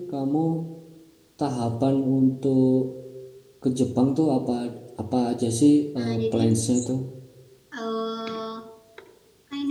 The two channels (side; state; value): both; identical; correlation 1.00